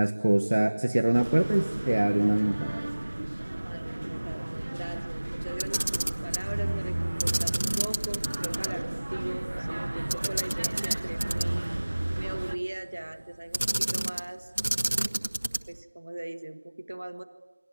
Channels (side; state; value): both; inverted; correlation -1.00